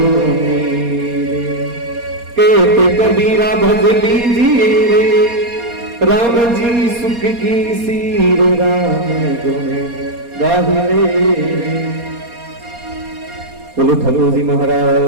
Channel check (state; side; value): late; left; 4.2 ms